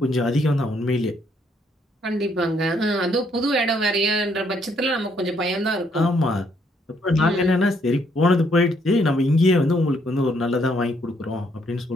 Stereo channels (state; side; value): normal; both; correlation 0.70